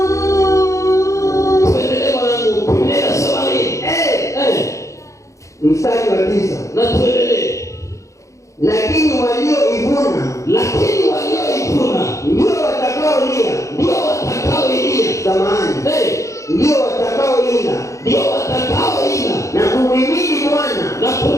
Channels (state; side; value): late; right; 0.15 ms